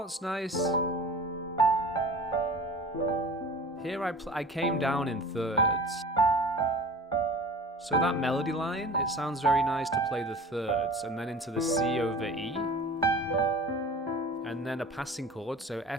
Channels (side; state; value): both; normal; correlation 0.40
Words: nice... Here I came down in thirds. So that melody line, it sounds very nice to play the thirds, and then into the C over E. And then a passing chord, so